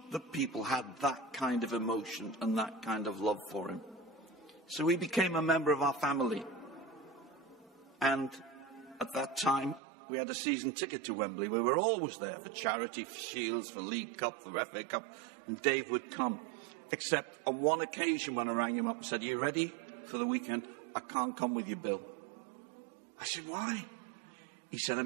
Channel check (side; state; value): left; drops out; at 9.8 s